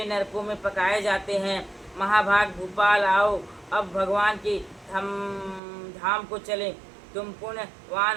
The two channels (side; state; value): left; drops out; at 5.6 s